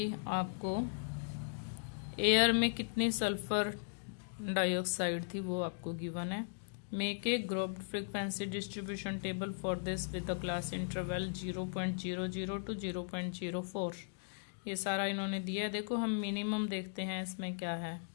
आपको एयर में कितनी सल्फर डाइऑक्साइड थी वो आपको गिवन है। Make a grouped frequency distribution table for this with the class interval 0.00 to 0.04. ये सारा इन्होंने दिया है। देखो हम मिनिमम देखते हैं इसमें क्या है।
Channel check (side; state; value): right; silent; digital silence